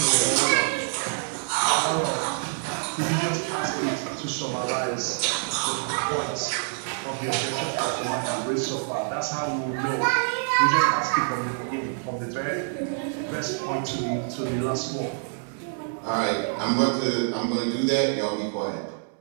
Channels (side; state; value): left; silent; 61 dB below the other